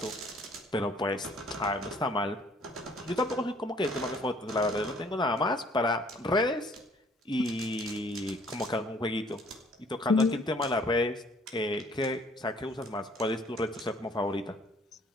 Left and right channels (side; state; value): both; normal; correlation 0.59